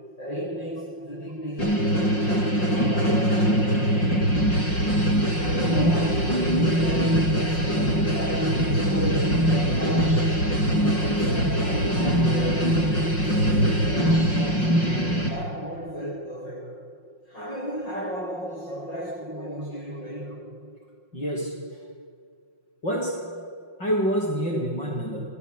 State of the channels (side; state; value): right; late; 5.6 ms